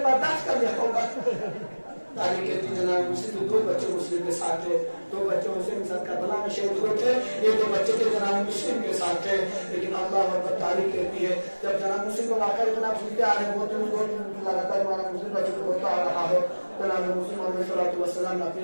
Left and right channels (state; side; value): inverted; both; correlation -1.00